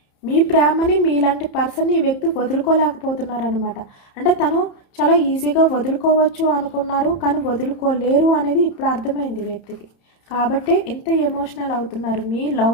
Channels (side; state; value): right; late; 30 ms